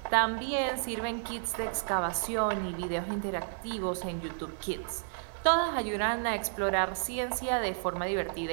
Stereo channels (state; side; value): silent; left; 57 dB below the other